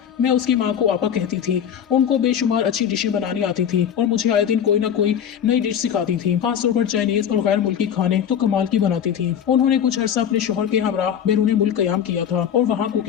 मैं उसकी माँ को आपा कहती थी। उनको बेशुमार अच्छी डिशें बनानी आती थी और मुझे आए दिन कोई ना कोई नई डिश सिखाती थी। खासतौर पर चाइनीज और गैर मुल्की खाने तो कमाल की बनाती थी। उन्होंने कुछ अरसा अपने शोहर के हमरा बैरून मुल्क कयाम किया था और वहाँ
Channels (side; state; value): right; quieter; 8.8 dB